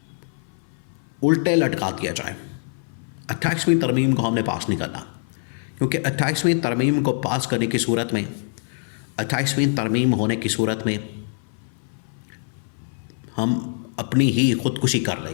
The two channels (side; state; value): right; silent; 60 dB below the other